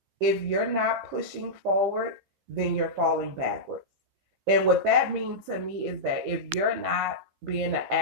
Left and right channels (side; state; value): left; late; 15 ms